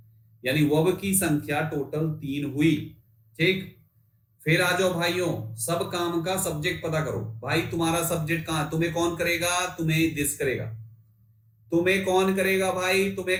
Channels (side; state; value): both; identical; correlation 1.00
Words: यानी वर्ब की संख्या टोटल 3 हुई। ठीक, फिर आ जाओ भाइयों, सब काम का सब्जेक्ट पता करो। भाई तुम्हारा सब्जेक्ट कहां, तुम्हें कौन करेगा, तुम्हें दिस करेगा। तुम्हें कौन करेगा भाई,